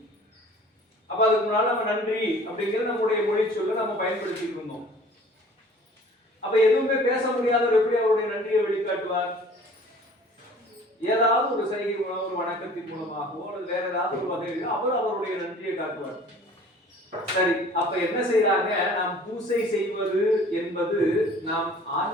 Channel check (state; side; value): normal; both; correlation 0.49